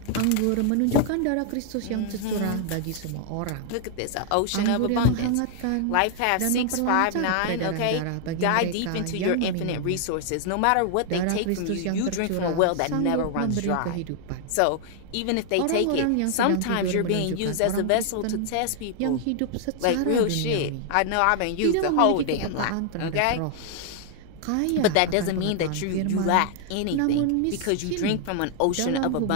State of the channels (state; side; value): different; both; correlation 0.00